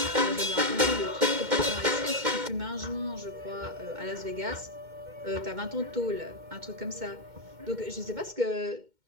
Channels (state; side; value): late; left; 2.1 ms